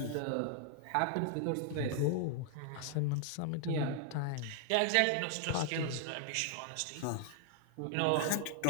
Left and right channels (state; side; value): different; both; correlation 0.00